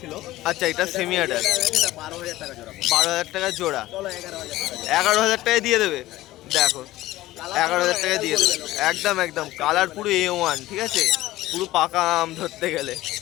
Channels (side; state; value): right; quieter; 16.5 dB